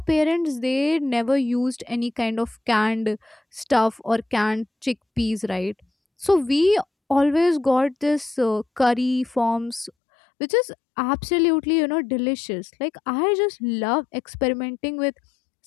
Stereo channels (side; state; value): right; drops out; at 9.9 s